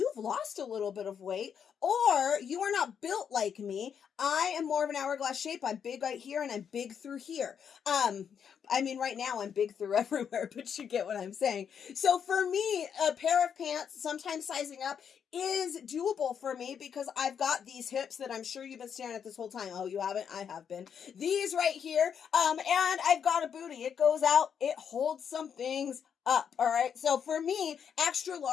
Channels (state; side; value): quieter; right; 7.7 dB